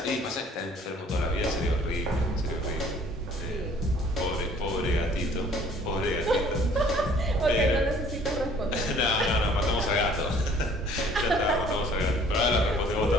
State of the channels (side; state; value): both; normal; correlation 0.56